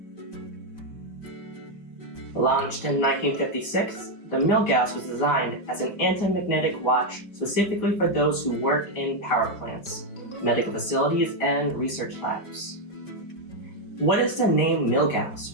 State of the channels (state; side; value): late; right; 5.0 ms